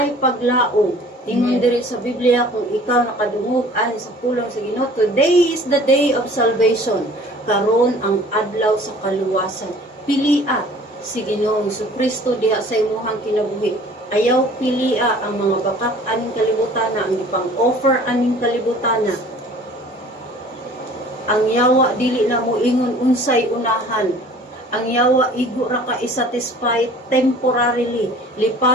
paglaom. Ingon diri sa Biblia kung ikaw nakadungog ani sa pulong sa Ginoo, today is the day of salvation. Karon ang adlaw sa kaluwasan. Pilia si Ginoong Kristo diha sa imong kinabuhi. Ayaw pilia ang mga bakat aning kalibutan, ang ipang offer aning kalibutan. ang yawa dili na mo ingon unsay unahan. Ang yawa igo ra ka isatisfy temporarily.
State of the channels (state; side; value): normal; both; correlation 0.49